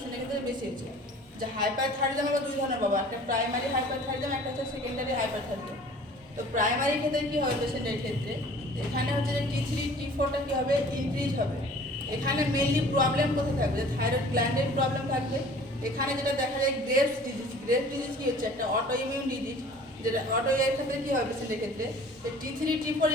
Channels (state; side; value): normal; both; correlation 0.48